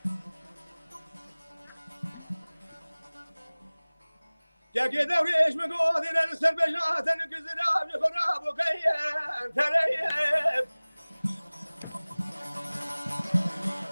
که دوریش مگو دیدن سر بجاتن گزراب خراب و قیم تریم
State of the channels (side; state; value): both; inverted; correlation -1.00